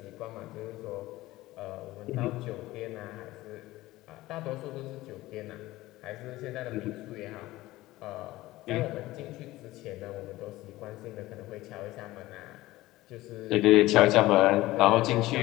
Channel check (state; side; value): quieter; right; 17.7 dB